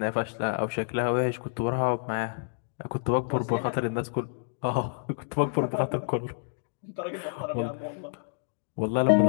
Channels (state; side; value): silent; right; digital silence